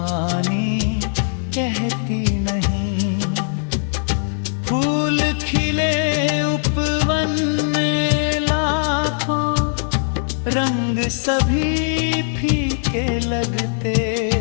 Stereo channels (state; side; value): silent; right; digital silence